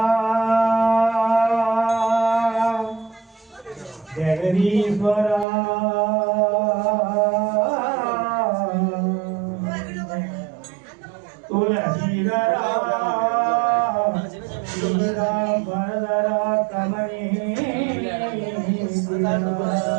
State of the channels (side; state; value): left; drops out; at 5.5 s